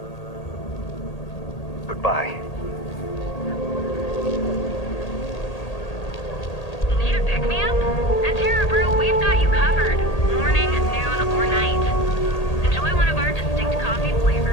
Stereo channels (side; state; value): right; late; 1.8 ms